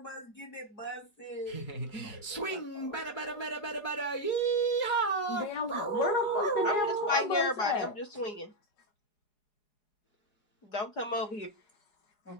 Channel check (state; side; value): late; right; 4.8 ms